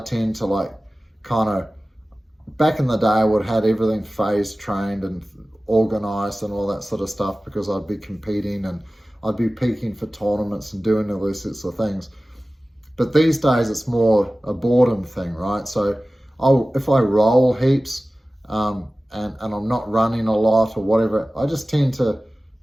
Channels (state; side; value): normal; both; correlation 0.97